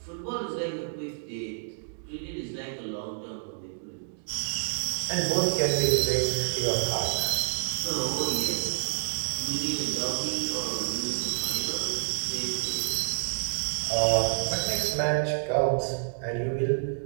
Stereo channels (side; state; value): left; silent; digital silence